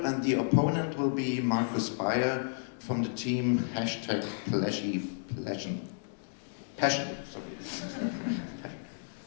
and the opponent will be Markus Bayer from the team Passion.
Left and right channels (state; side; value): silent; right; digital silence